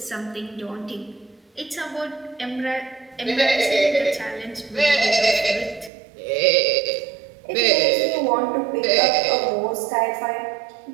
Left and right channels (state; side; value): drops out; left; at 5.9 s